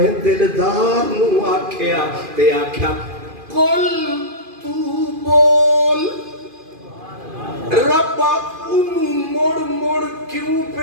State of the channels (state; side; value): late; left; 2.4 ms